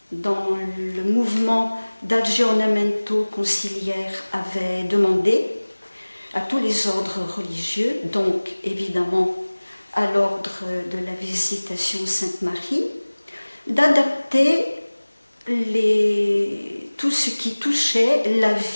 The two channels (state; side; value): inverted; both; correlation -1.00